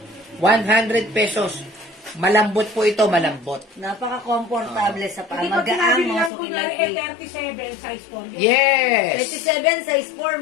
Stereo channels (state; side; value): drops out; right; at 6.3 s